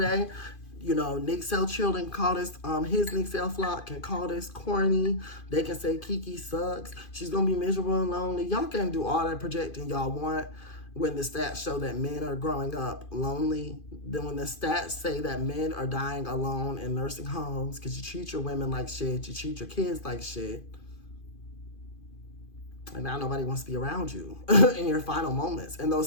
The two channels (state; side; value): late; right; 2.5 ms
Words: day, Nick Sell Children call this, his Nick Sell flock can call this corny. They can say Keke sucks. She's going to be miserable and lonely. Y'all can do all that projecting y'all want. When the stats show that men are growing up lonely, then when the stats say that men are dying alone in nursing homes because you treat your women like shit, you treat your kids like shit, and now nobody wants to be around you in your final moments. And